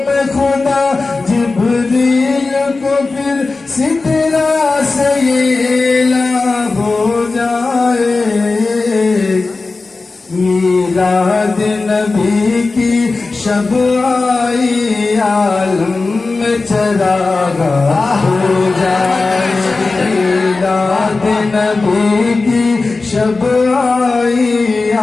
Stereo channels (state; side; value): quieter; right; 3.7 dB